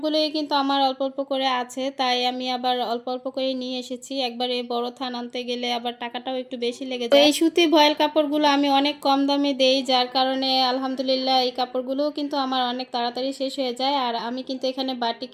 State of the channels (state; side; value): identical; both; correlation 1.00